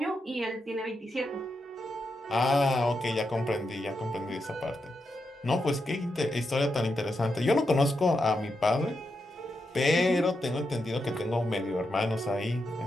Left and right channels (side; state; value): both; normal; correlation 0.85